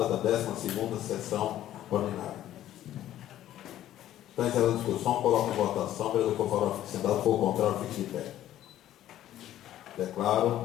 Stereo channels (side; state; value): right; quieter; 12.7 dB